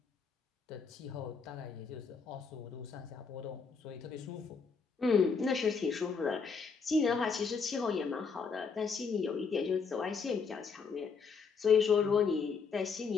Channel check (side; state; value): right; quieter; 5.4 dB